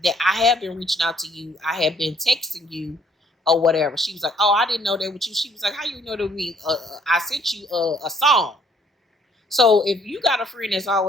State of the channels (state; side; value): normal; both; correlation 0.63